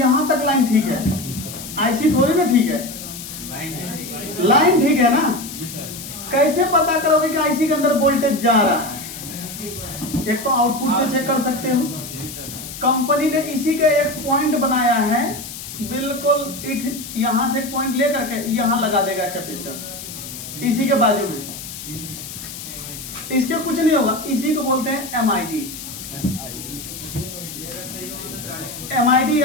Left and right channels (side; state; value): left; noise; hiss, 11 dB below the sound